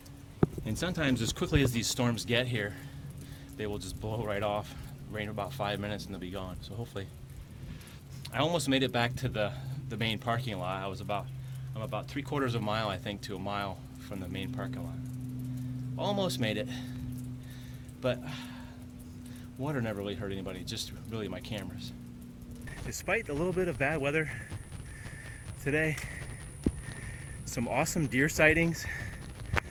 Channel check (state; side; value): identical; both; correlation 1.00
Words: And sometimes as quickly as these storms get here, they will just blow right off, rain about 5 minutes and they'll be gone. So hopefully, I almost made it back to the main parking lot. I'm about 3/4 of a mile, I think, to a mile from the main parking lot. Almost made it, but water never really hurt anybody, just really my cameras. Despite a little bit of bad weather today, some awesome deer sightings,